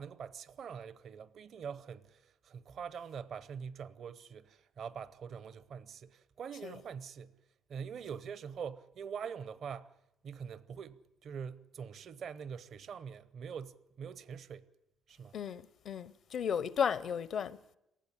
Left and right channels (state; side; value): normal; both; correlation 0.71